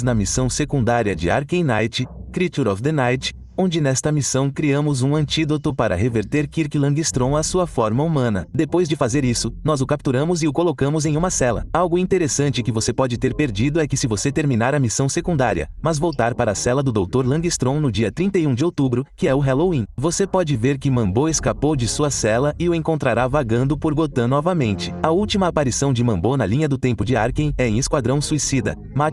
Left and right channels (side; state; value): both; identical; correlation 1.00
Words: na missão secundária de Arkham Knight, Creature of the Night, onde nesta missão criamos um antídoto para reverter Kirk Langstrom à sua forma humana. Depois de fazer isso, nós o capturamos e o colocamos em uma cela. Algo interessante que você pode ter perdido é que se você terminar a missão secundária, mas voltar para a cela do Dr. Langstrom no dia 31 de outubro, que é o Halloween, você pode ver que Mambo escapou de sua cela e o encontrará vagando por Gotham novamente. A última aparição de Mambo na linha do tempo de Arkham é em Esquadrão Suicida,